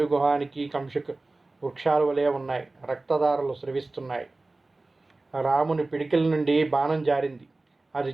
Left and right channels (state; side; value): quieter; left; 3.2 dB